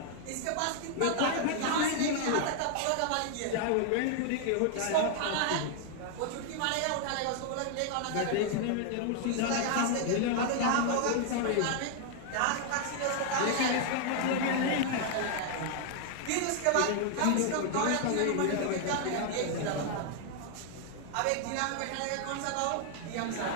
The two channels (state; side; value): different; both; correlation 0.00